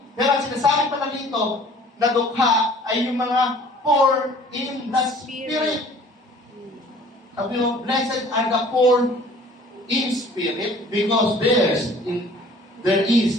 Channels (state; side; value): normal; both; correlation 0.51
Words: Pero ang sinasabi pala rito, na dukha ay yung mga poor in the spirit. Sabi mo, blessed are the poor in spirit, because there is